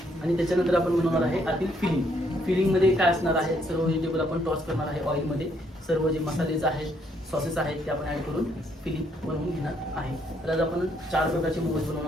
आणि त्याच्यानंतर आपण बनवणार आहे आतील फिलिंगमध्ये काय असणार आहे सर्व व्हेजिटेबल आपण टॉस करणार आहे ऑइलमध्ये. सर्व जे मसालेज आहेत सॉसेस आहेत ते आपण ॲड करून फिलिंग बनवून घेणार आहे. तर आज आपण 4 प्रकारचे मोमोज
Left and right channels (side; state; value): both; normal; correlation 0.70